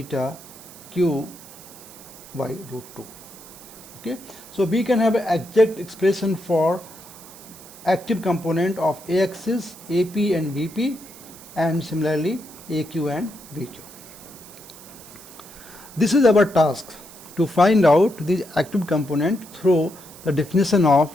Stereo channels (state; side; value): noise; right; hiss, 18 dB below the sound